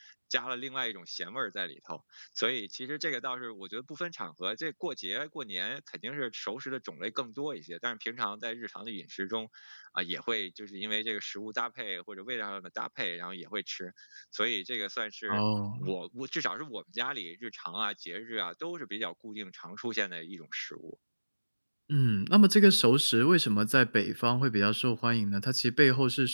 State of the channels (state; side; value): inverted; both; correlation -1.00